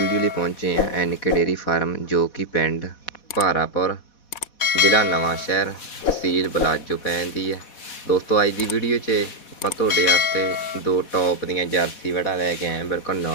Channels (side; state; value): right; late; 4.1 ms